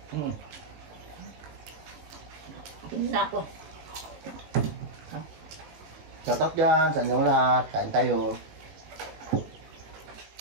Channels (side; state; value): left; late; 19 ms